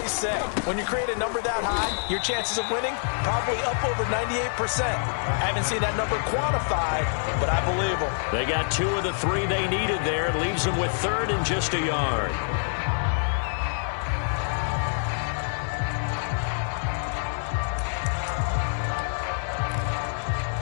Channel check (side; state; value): right; silent; digital silence